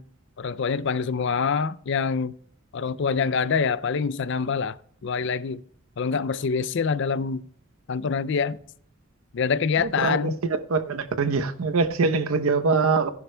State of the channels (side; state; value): both; normal; correlation -0.06